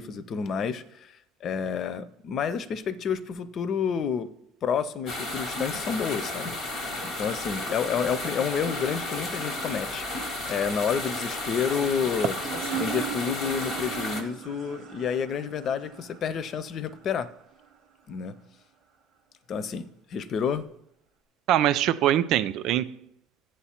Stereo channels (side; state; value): both; normal; correlation 0.48